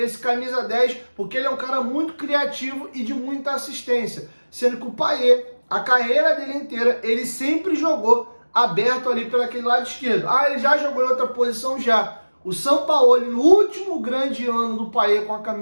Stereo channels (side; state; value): both; inverted; correlation -1.00